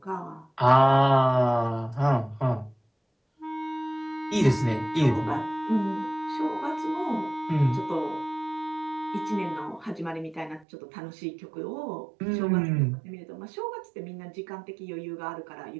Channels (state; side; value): drops out; left; at 10.7 s